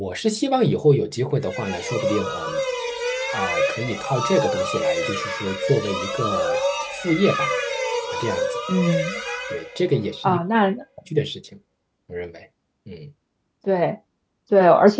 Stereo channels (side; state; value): both; identical; correlation 1.00